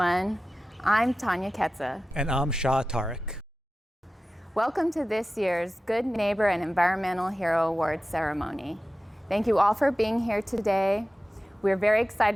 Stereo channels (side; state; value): both; normal; correlation 0.95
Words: I'm Tanya Ketza. And I'm Shah Tariq. Welcome to this year's Good Neighbor and Environmental Hero Awards ceremony. Thank you all for being here today. We're very